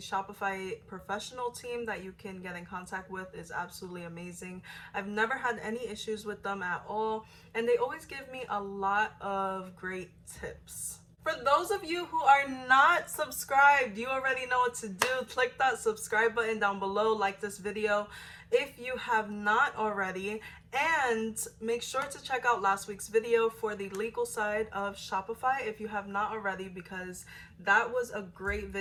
professional team that you can get in contact with is absolutely amazing. I've never had any issues with them at all, and they always give me a lot of great tips. For those of you who are not subscribed, you already know what to do. Click that subscribe button down below, like this video if you have not already, and make sure to check out last week's video for the legal side of Shopify if you have not already, because that was a great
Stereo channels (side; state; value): both; identical; correlation 1.00